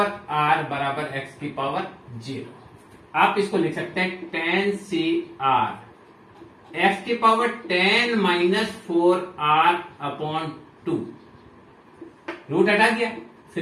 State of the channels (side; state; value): both; identical; correlation 1.00